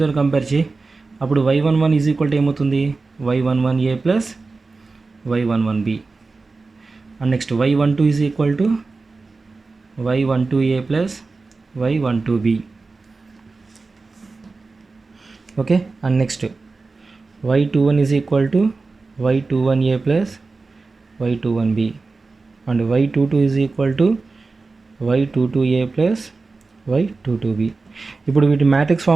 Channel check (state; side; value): quieter; left; 3.9 dB